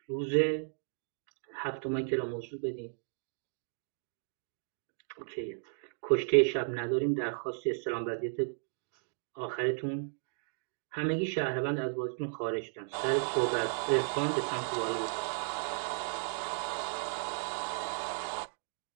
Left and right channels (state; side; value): silent; left; digital silence